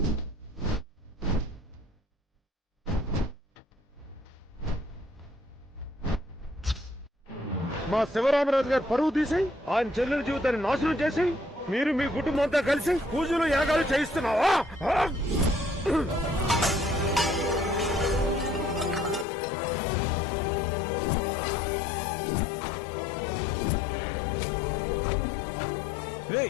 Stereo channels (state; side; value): drops out; right; at 19.2 s